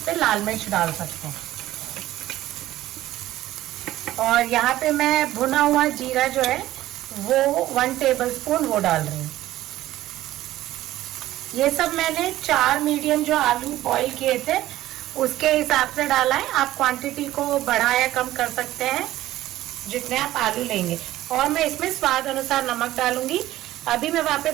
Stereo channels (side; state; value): left; quieter; 14.9 dB